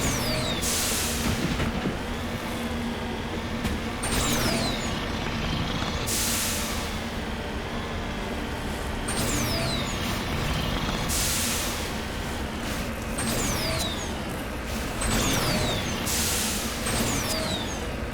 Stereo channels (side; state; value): both; identical; correlation 1.00